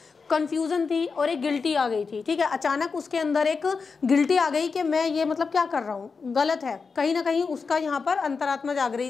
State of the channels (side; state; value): right; quieter; 4.9 dB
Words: कन्फ्यूज़न थी और एक गिल्टी आ गई थी, ठीक है। अचानक उसके अंदर एक गिल्टी आ गई कि मैं ये मतलब क्या कर रहा हूँ, गलत है। कहीं ना कहीं उसका यहाँ पर अंतरात्मा जाग